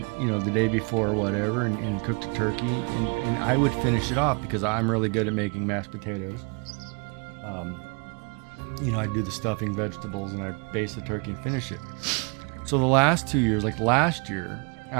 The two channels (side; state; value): left; quieter; 34.1 dB